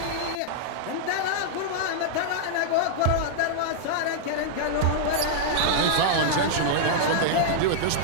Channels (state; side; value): different; both; correlation -0.02